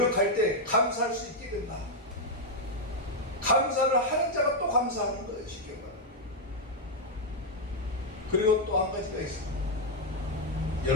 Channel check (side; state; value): both; normal; correlation -0.01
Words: 때 감사할 수 있게 된다. 감사를 하는 자가 또 감사하는 거예요. 쉽게 말하면. 그리고 또 한 가지가 있습니다.